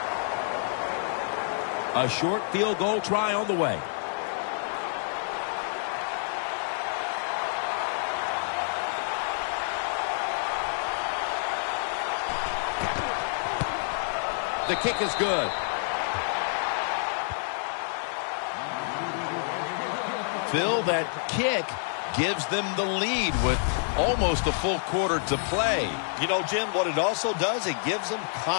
A short field goal try on the way. The kick is good. Phil, that kick gives them the lead with almost a full quarter to play. You know, Jim, what it also does, it gives them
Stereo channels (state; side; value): silent; right; digital silence